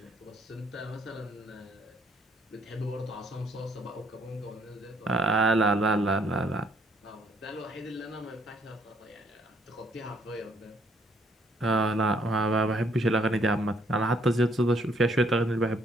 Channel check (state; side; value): normal; both; correlation 0.66